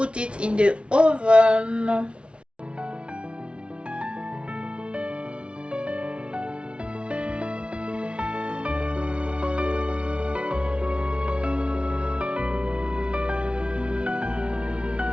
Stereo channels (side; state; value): left; late; 0.058 ms